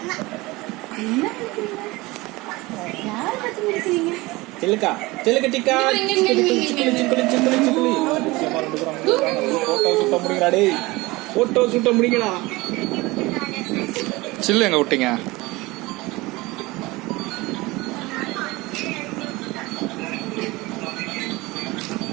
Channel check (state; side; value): quieter; left; 21.7 dB